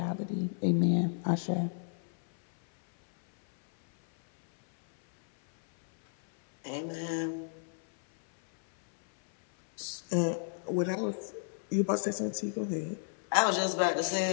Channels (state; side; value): silent; right; 57 dB below the other